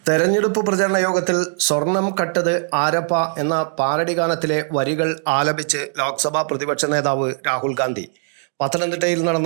തെരഞ്ഞെടുപ്പ് പ്രചരണ യോഗത്തിൽ സ്വർണം കട്ടത് ആരപ്പ എന്ന പാരഡി ഗാനത്തിലെ വരികൾ ആലപിച്ച് ലോക്സഭാ പ്രതിപക്ഷ നേതാവ് രാഹുൽ ഗാന്ധി പത്തനംതിട്ടയിൽ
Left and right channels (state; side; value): silent; left; digital silence